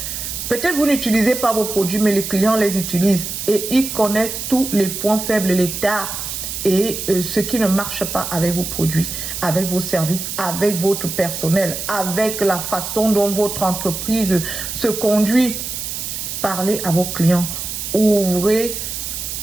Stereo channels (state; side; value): noise; right; hiss, 5 dB below the sound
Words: Peut-être vous n'utilisez pas vos produits, mais les clients les utilisent. Et ils connaissent tous les points faibles, les tares et ce qui ne marche pas avec vos produits, avec vos services, avec votre personnel, avec la façon dont votre entreprise se conduit. Parlez à vos clients. Ouvrez